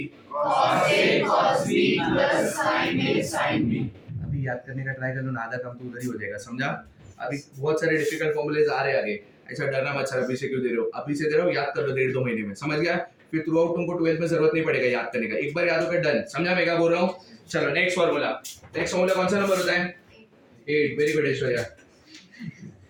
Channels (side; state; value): both; identical; correlation 1.00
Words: cos a cos b plus sin a sin b। अभी याद करने का try कर लो ना, आधा काम तो उधर ही हो जाएगा। समझा? अभी बहुत सारे डिफिकल्ट फॉर्मूलेज आ रहे हैं आगे। ऐसा डरना मत सर अभी से क्यों दे रहे हो, अभी से दे रहे हो, याद कर लो 1.5-2 महीने में। समझ गया? फिर थ्रू आउट तुमको 12th में जरूरत नहीं पड़ेगा याद करने का, एक बार याद होकर डन। समझा मैं क्या बोल रहा हूँ? चलो नेक्स्ट फॉर्मूला। नेक्स्ट फॉर्मूला कौन सा नंबर होता है? 8। Very good Aishwarya.